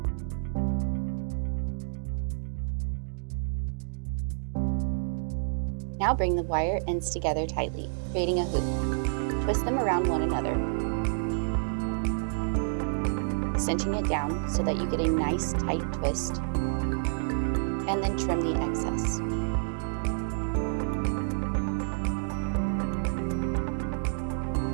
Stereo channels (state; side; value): silent; left; digital silence